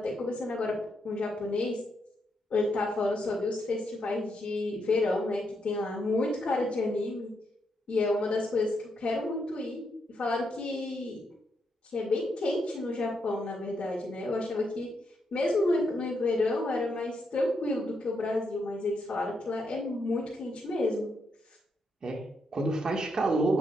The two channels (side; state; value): both; normal; correlation 0.80